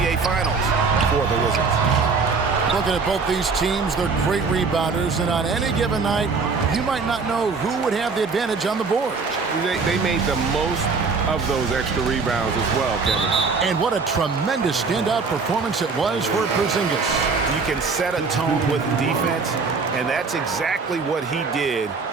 Finals for the Wizards. Looking at both these teams, they're great rebounders, and on any given night, you might not know who would have the advantage on the board. They made the most of those extra rebounds as well, Kevin. And what a tremendous standout performance it was for Porzingis. You can set a tone with defense, and that's exactly what he did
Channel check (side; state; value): left; quieter; 4.7 dB